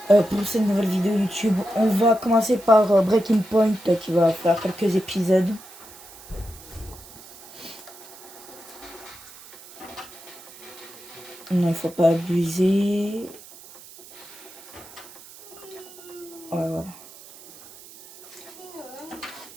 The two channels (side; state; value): right; noise; hiss, 19 dB below the sound